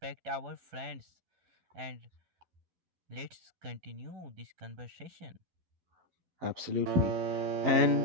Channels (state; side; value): late; left; 12 ms